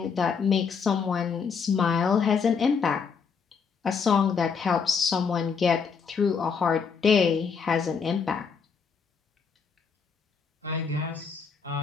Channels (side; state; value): right; quieter; 5.9 dB